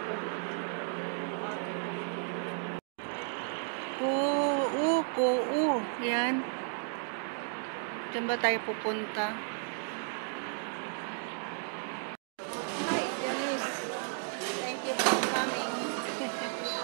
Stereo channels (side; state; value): left; silent; 55 dB below the other